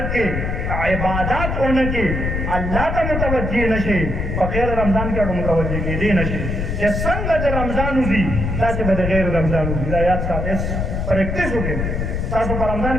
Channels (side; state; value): left; noise; rumble, 2 dB below the sound